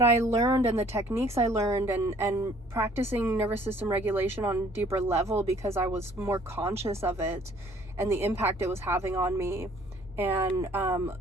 I learned and the techniques I learned and practicing nervous system regulation on a deeper level because I was more conscious of it and the impact it was having on me, and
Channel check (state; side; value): normal; both; correlation 0.58